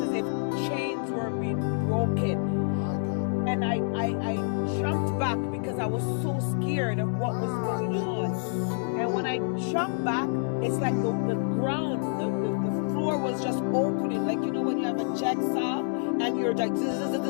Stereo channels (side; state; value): right; silent; digital silence